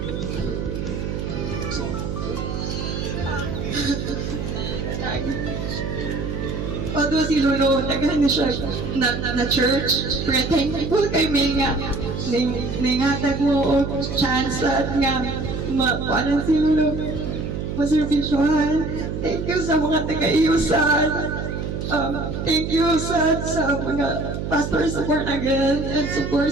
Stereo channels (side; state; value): right; noise; hum, 4 dB below the sound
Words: Although si Lolo, tagahan na siya na church, pero thankful kay May nga, ningatag mo o chance at nga, makuanan si Lolo, maservisyohan. Thank you sa mga taga-iusan. Thank you sa mga pastor support again and support